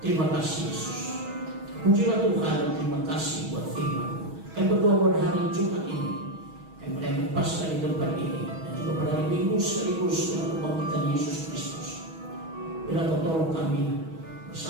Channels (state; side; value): late; left; 6.2 ms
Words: kasih Yesus. Pujilah Tuhan dan terima kasih buat firman-Mu. Kami berdoa pada hari Jumat ini, kami merayakan Paskah di tempat ini, dan juga pada hari Minggu sekaligus dengan kebangkitan Yesus Kristus. Bila Kau tolong kami